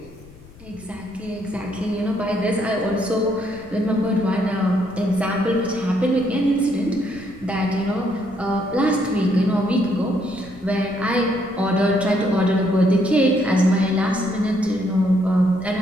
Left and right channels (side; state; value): left; noise; rumble, 22 dB below the sound